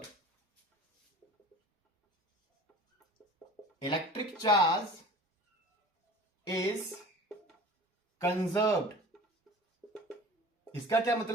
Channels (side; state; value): both; normal; correlation 0.41